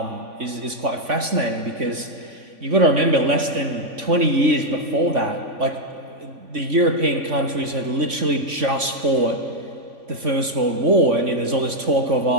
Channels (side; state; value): left; late; 3.5 ms